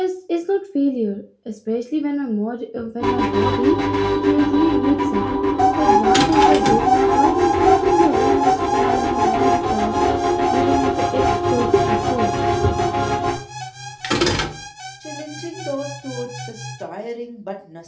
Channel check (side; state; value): both; identical; correlation 1.00